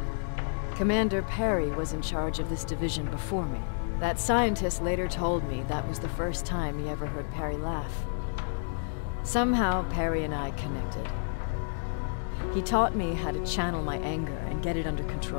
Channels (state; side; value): silent; right; digital silence